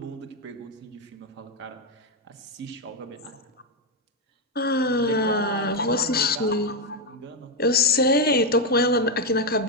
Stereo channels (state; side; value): normal; both; correlation 0.05